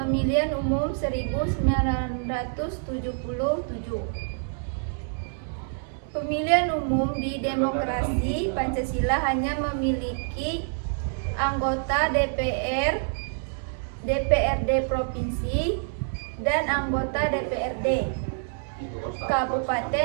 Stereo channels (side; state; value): left; silent; digital silence